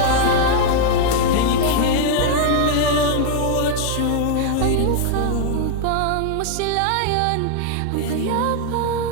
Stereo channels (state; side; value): different; both; correlation 0.00